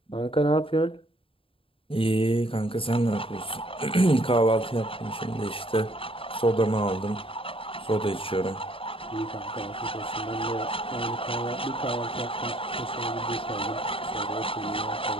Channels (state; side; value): late; right; 0.26 ms